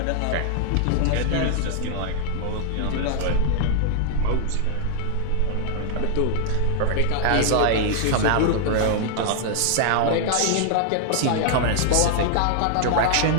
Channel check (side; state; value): both; different; correlation 0.00